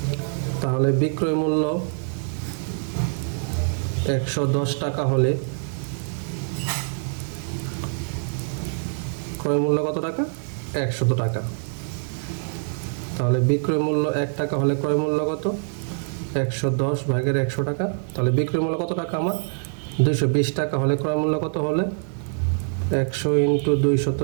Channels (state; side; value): silent; left; digital silence